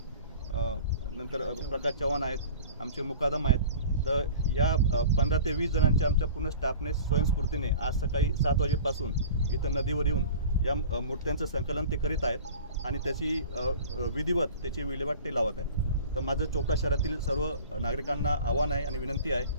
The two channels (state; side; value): inverted; both; correlation -0.40